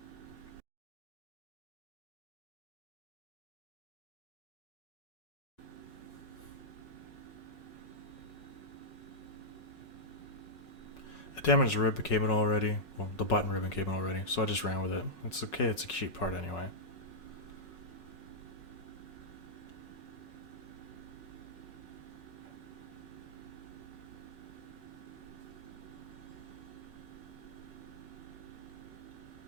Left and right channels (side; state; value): right; late; 5.5 ms